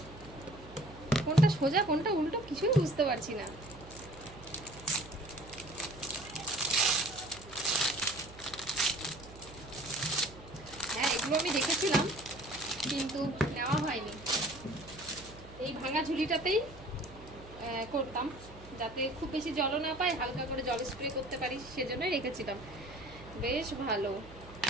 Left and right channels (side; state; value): right; noise; hum, 18 dB below the sound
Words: কোনটা সোজা কোনটা উল্টো কিছুই বুঝতে পারছি না। হ্যাঁ, এগুলো আমি দেখেছিলাম কিন্তু নেওয়া হয়নি। এই ভাঙা ঝুলিটাতেই করতাম, যাতে খুব বেশি জলও না পায়, হালকা করে জল স্প্রে করতে পারি, সেজন্যই রেখেছিলাম। বেশ ভালো।